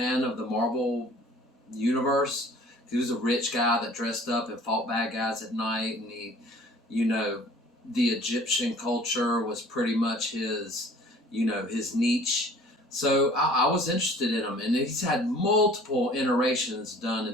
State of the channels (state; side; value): normal; both; correlation 0.50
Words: of the Marvel universe. He was a rich guy that dressed up and fought bad guys at night, and the Egyptian culture was pretty much his niche. So I was interested in him, and he's had multiple iterations done